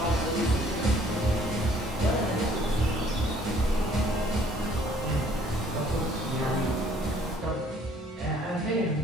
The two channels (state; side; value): normal; both; correlation 0.60